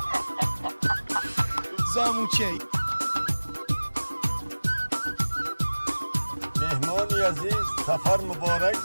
زاموچه. مهمانی عزیز سفر مبارک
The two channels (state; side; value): inverted; both; correlation -1.00